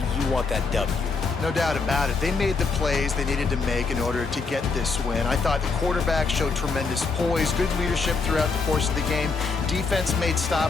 want that W. No doubt about it. They made the plays they needed to make in order to get this win. I thought the quarterback showed tremendous poise, good leadership throughout the course of the game. Defense made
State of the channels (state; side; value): quieter; right; 4.5 dB